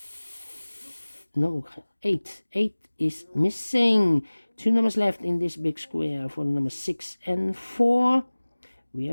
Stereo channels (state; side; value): inverted; both; correlation -1.00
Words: 8. 8 is missing. 2 numbers left in this big square for the number 6 and 4. We